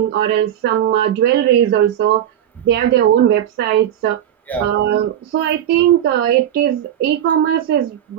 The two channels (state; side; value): quieter; left; 10.7 dB